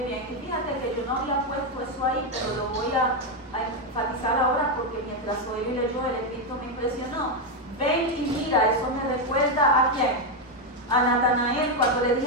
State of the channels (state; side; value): normal; both; correlation 0.05